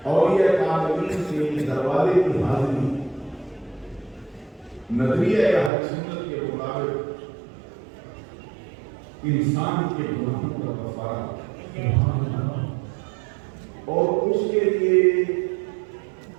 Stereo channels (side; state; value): left; drops out; at 5.7 s